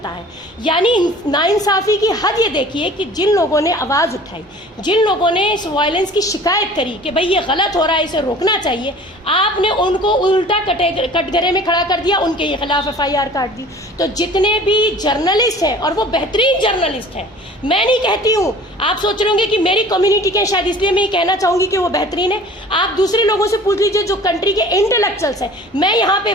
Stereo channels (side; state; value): both; normal; correlation 0.46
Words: है। यानी नाइंसाफ़ी की हद ये देखिए कि जिन लोगों ने आवाज़ उठाई, जिन लोगों ने इस वायलेंस की शिकायत करी कि भाई ये गलत हो रहा है, इसे रोकना चाहिए, आपने उनको उल्टा कटघरे में खड़ा कर दिया, उनके खिलाफ एफआईआर काट दी। तो जितने भी जर्नलिस्ट हैं, और वो बेहतरीन जर्नलिस्ट हैं, मैं नहीं कहती हूँ, आप सोच रहे होंगे कि मेरी कम्युनिटी के शायद इसलिए मैं ये कहना चाहूँगी कि वो बेहतरीन है। आप दूसरे लोगों से पूछ लीजिए जो कंट्री के इंटेलेक्चुअल्स हैं। मैं यहाँ पे